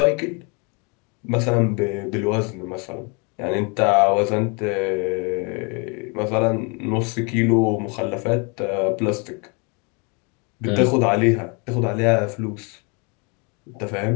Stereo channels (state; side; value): quieter; right; 32.8 dB